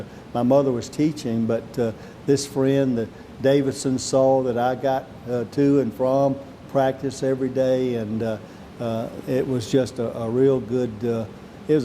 My mother was teaching, but this friend, the Davidson, saw that I got to and from practice every day, and it was just a real good. It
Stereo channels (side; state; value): both; identical; correlation 1.00